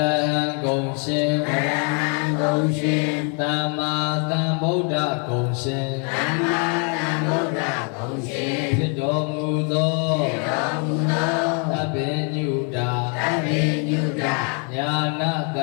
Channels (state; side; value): quieter; right; 38.4 dB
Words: ဟံကုံရှင်သမ္မာသမ္ဗုဒ္ဓကုံရှင်ဖြစ်တော်မူသောသဗ္ဗညုတာညာနာသ